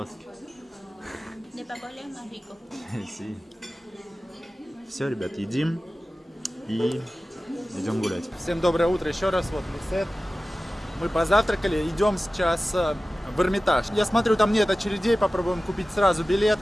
De papola es más rico. Все, ребят, едим и идем гулять. Всем доброе утро еще раз. Вот Лисет. Мы позавтракали, идем сейчас в Эрмитаж. Я смотрю, там нет очередей, попробуем купить сразу билет.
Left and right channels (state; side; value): normal; both; correlation 0.96